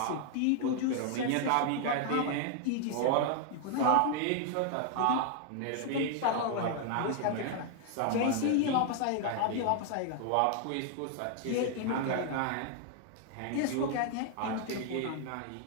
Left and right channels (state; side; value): different; both; correlation 0.00